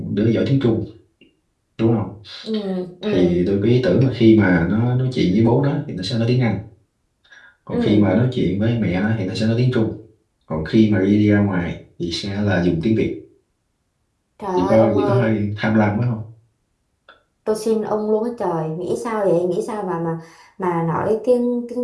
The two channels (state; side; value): identical; both; correlation 1.00